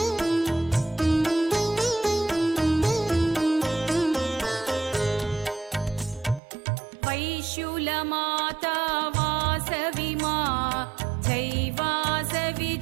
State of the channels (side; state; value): left; drops out; at 6.4 s